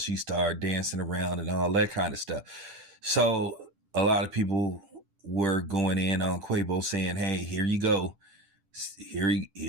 dancing around and all that kind of stuff. So a lot of people were going in on Quavo saying, "Hey, here you go, here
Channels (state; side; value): late; left; 10 ms